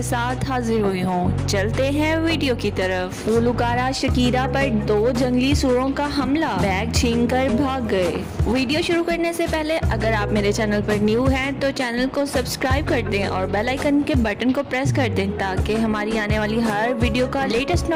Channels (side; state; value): both; identical; correlation 1.00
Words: साथ हाजिर हुई हूँ। चलते हैं वीडियो की तरफ। गुलकारा शकीरा पर 2 जंगली सूरों का हमला, बैग छीनकर भाग गए। वीडियो शुरू करने से पहले अगर आप मेरे चैनल पर न्यू हैं तो चैनल को सब्सक्राइब कर दें और बेल आइकन के बटन को प्रेस कर दें ताकि हमारी आने वाली हर वीडियो का लेटेस्ट